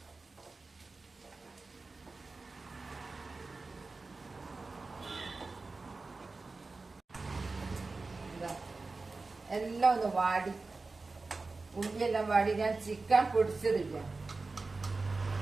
എല്ലാം ഒന്ന് വാടി, ഉള്ളിയെല്ലാം വാടി. ഞാൻ ചിക്കൻ പൊടിച്ചതില്ല.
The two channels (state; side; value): quieter; left; 3.7 dB